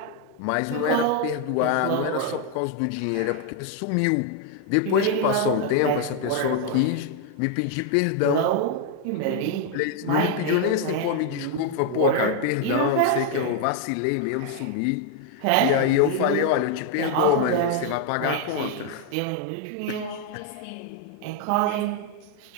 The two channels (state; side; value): different; both; correlation 0.00